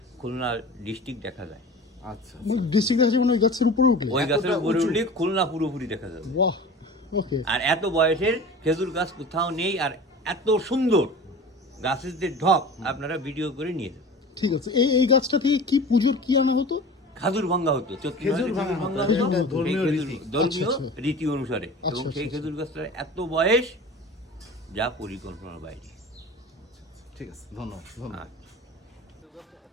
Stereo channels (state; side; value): normal; both; correlation 0.37